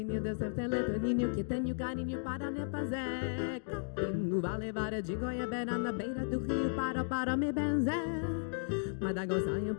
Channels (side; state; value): right; silent; digital silence